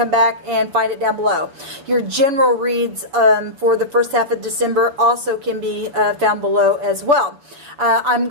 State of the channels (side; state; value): left; late; 6.5 ms